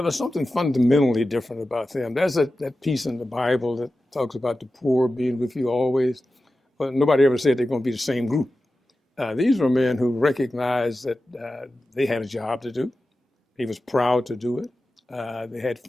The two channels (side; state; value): both; normal; correlation 0.93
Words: was something fundamentally different about them. There's that piece in the Bible that talks about the poor being with you always, but nobody ever said they're going to be the same group. These were men who recognized that they had a job to do. They was proud to do it. They had